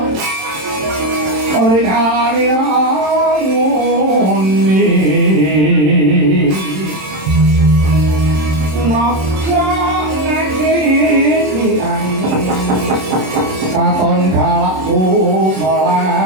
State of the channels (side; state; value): left; late; 27 ms